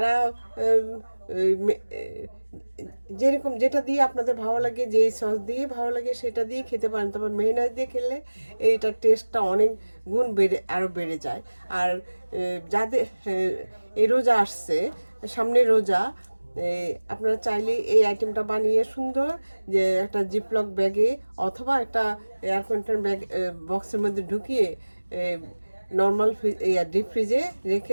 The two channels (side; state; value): both; inverted; correlation -1.00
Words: এই যেরকম যেটা দিয়ে আপনাদের ভালো লাগে, যে সস দিয়ে ভালো লাগে সেটা দিয়ে খেতে পারেন। তবে মেয়োনেজ দিয়ে খেলে এইটার টেস্টটা অনেক গুণ আরও বেড়ে যায়। আর যাদের এই রোজা আসছে, সামনে রোজা, আপনারা চাইলে এই আইটেমটা বানিয়ে সুন্দর যে একটা জিপলক ব্যাগে অথবা একটা এয়ার কন্টেনার ব্যাগ বক্সের মধ্যে ঢুকিয়ে নর্মাল ডিপ ফ্রিজে